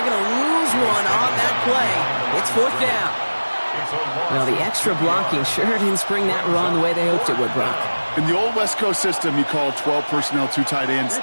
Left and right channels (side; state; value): both; inverted; correlation -1.00